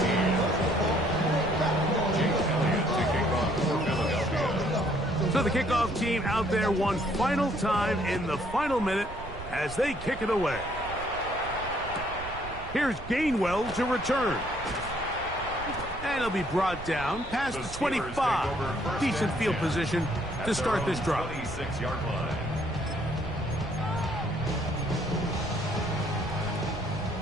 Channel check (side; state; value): right; noise; rumble, 12 dB below the sound